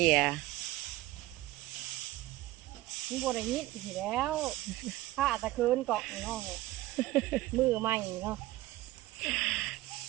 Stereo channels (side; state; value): left; quieter; 17.3 dB